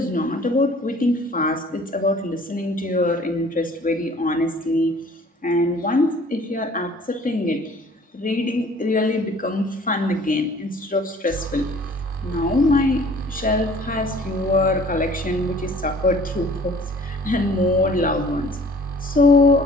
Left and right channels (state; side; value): normal; both; correlation 0.52